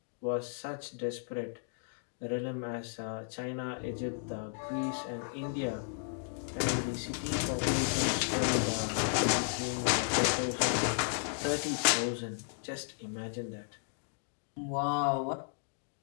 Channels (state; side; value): silent; right; digital silence